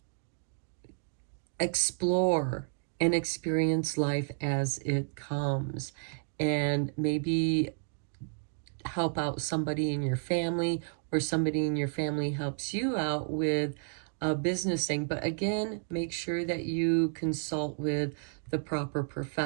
explore and experience life as it comes, and maybe help out somebody in your family, or somebody in your family helps you out with a business thing. But again, make sure that you consult with the proper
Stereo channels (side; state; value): left; silent; 57 dB below the other